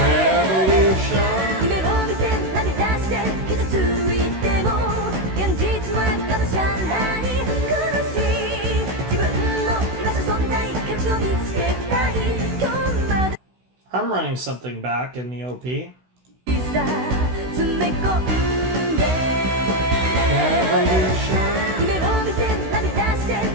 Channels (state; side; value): late; left; 16 ms